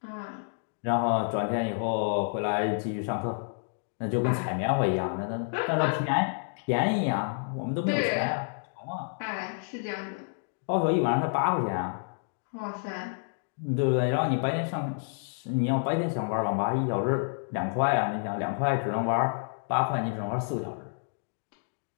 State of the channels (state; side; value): silent; right; digital silence